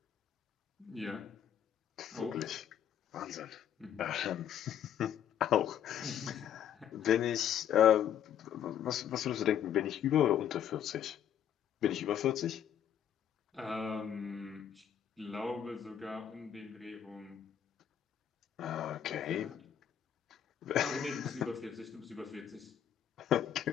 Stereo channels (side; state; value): right; quieter; 9.7 dB